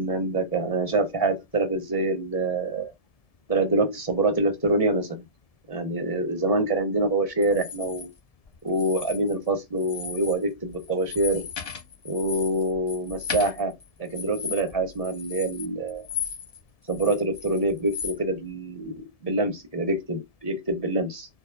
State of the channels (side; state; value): right; late; 1.7 ms